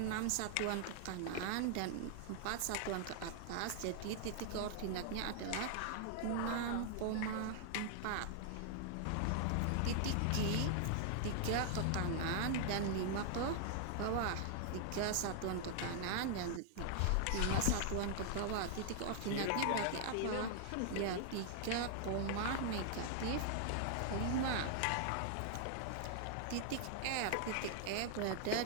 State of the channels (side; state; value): both; different; correlation 0.00